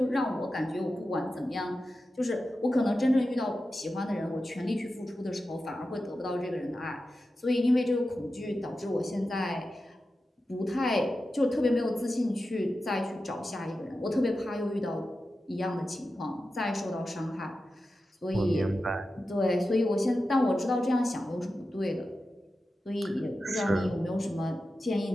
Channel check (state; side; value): normal; both; correlation 0.92